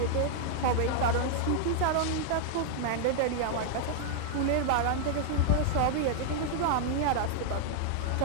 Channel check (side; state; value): both; different; correlation -0.01